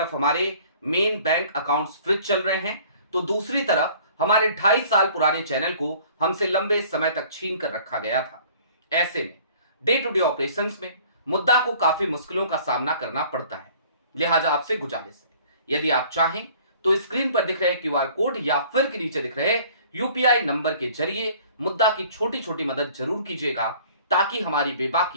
हमारे मेन बैंक अकाउंट्स फ्रीज चल रहे हैं, तो दूसरी तरफ हमारे 2.5 साल पुराने चैनल को हमसे लंबे समय तक छीन कर रखा गया था। ऐसे में डे टू डे ऑपरेशंस में मुद्दा को काफी मुश्किलों का सामना करना पड़ता है। लिहाजा आपसे गुजारिश है, यदि आप चाहें तो स्क्रीन पर दिख रहे क्यूआर कोड या फिर के नीचे दिख रहे यूपीआई नंबर के जरिए मुद्दा की छोटी छोटी मदद जरूर कीजिएगा, ताकि हमारी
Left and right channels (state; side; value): inverted; both; correlation -0.52